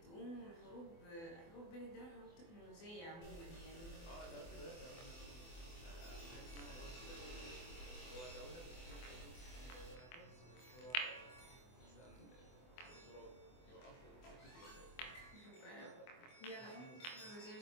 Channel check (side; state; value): right; late; 24 ms